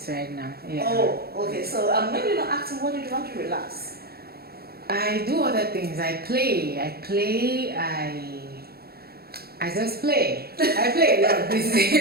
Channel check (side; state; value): left; late; 0.45 ms